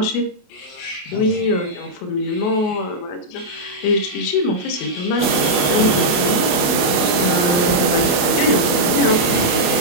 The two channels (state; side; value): late; right; 28 ms